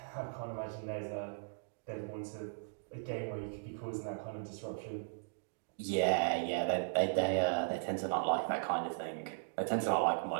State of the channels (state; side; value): silent; left; digital silence